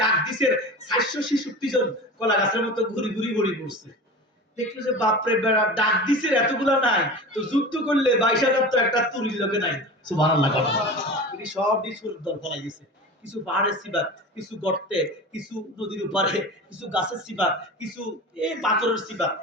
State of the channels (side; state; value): both; normal; correlation 0.32